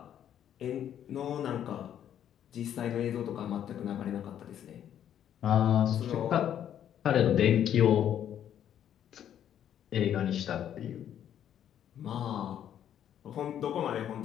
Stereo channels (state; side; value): quieter; right; 10.1 dB